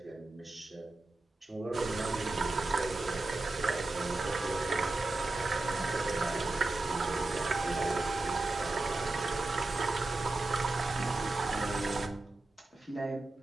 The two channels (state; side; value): quieter; left; 3.0 dB